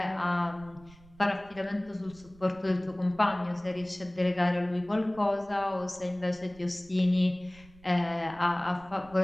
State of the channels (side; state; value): right; noise; rumble, 24 dB below the sound